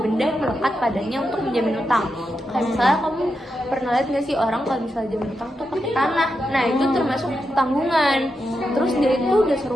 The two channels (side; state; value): both; normal; correlation 0.86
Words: yang melekat padanya untuk menjamin utang. Kayak misalnya kamu pernah lihat nggak sih orang kalau misalnya jamin utang tuh pakai tanah. Nah, itu termasuk tanggungan. Terus dia itu dasar